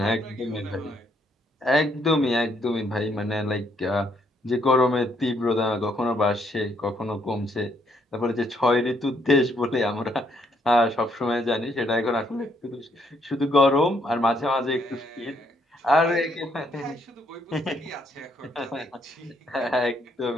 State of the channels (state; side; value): normal; both; correlation 0.71